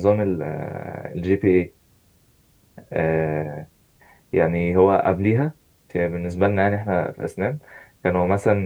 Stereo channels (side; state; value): both; identical; correlation 1.00